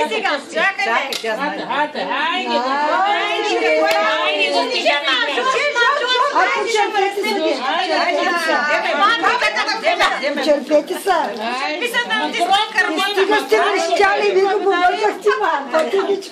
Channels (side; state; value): both; identical; correlation 1.00